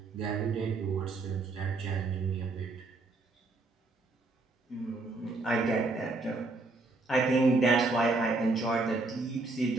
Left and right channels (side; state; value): left; quieter; 3.4 dB